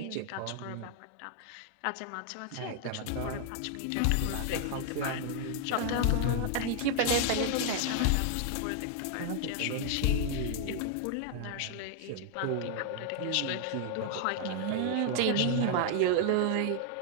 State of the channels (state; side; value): different; both; correlation 0.00